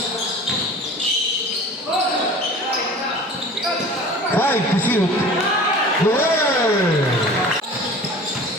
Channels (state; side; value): normal; both; correlation 0.41